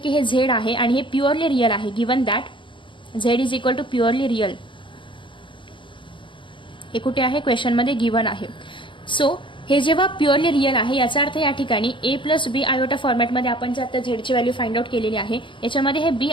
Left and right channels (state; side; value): late; right; 0.24 ms